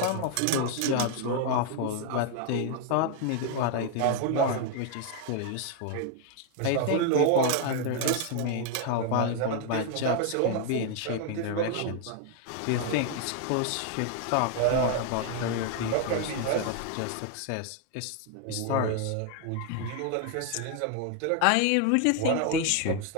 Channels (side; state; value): both; different; correlation 0.00